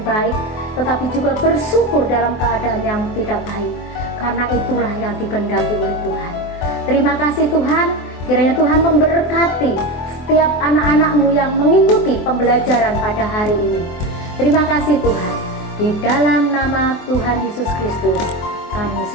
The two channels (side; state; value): right; late; 24 ms